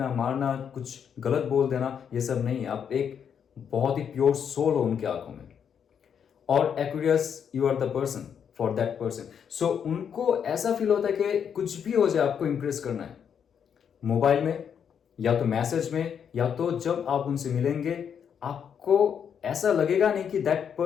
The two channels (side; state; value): right; quieter; 7.8 dB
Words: मारना, कुछ गलत बोल देना, ये सब नहीं है। आप एक बहुत ही प्योर सोल हो उनके आंखों में। और Aquarius, you are the person for that person. So उनको ऐसा फील होता है कि कुछ भी हो जाए आपको इंप्रेस करना है, मोबाइल में या तो मैसेज में, या तो जब आप उनसे मिलेंगे आपको ऐसा लगेगा नहीं कि that